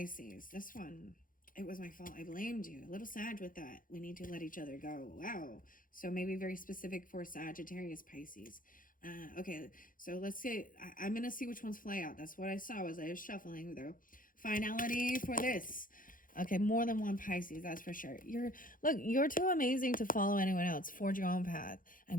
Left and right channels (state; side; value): late; right; 0.40 ms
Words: This one, it was my fault. I blamed you. A little Sag with that. We need to let each other go. Wow. So maybe very specific for Sagittarius, Pisces. Okay, so let's see. I'm going to see which ones fly out. That's what I saw as I was shuffling the finality for this. Okay, more than one Pisces, that's for sure. You're too amazing to follow anyone else. Forge your own path.